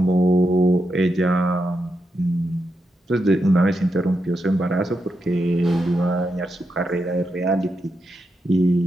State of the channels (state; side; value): normal; both; correlation 0.85